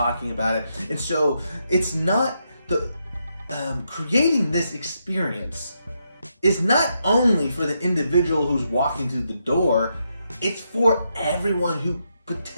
about it. And so it's not the creating this experience is not only for the individual who's walking through the door, it's for everyone who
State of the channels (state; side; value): inverted; both; correlation -0.81